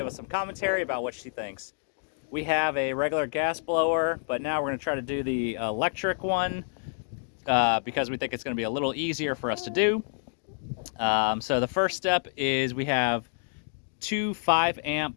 us some commentary about what she thinks. We have a regular gas blower, but now we're going to try to do the electric one. Because we think it's going to be a little easier for us to do. So the first step is we have two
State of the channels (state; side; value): silent; right; digital silence